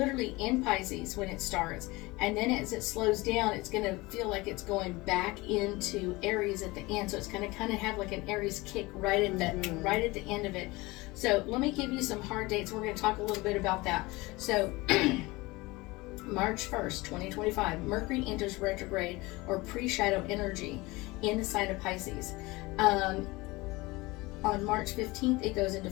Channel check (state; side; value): quieter; right; 22.2 dB